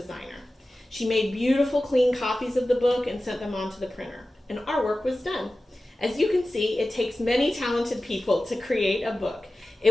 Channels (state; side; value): normal; both; correlation 0.96